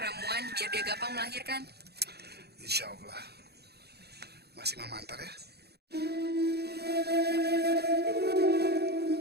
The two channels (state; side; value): late; left; 0.47 ms